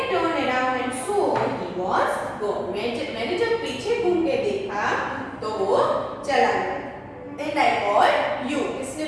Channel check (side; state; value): both; identical; correlation 1.00